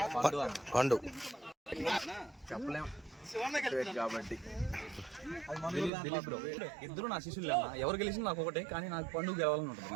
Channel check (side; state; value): left; drops out; at 5.9 s